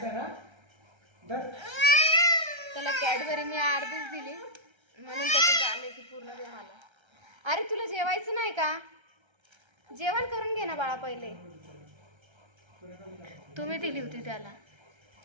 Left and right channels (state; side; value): late; left; 1.3 ms